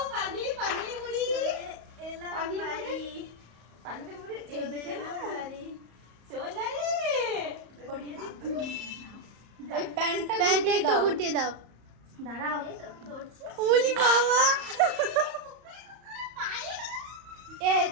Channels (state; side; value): late; left; 34 ms